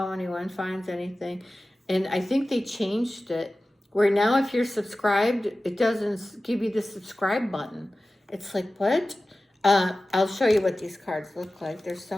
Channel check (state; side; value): normal; both; correlation 0.95